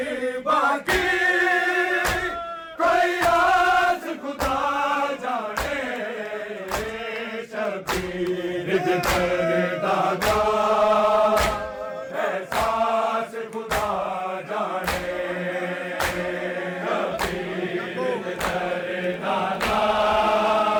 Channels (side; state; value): both; identical; correlation 1.00